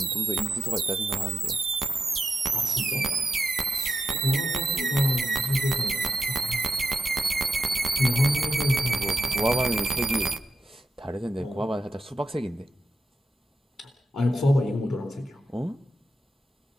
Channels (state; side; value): normal; both; correlation 0.88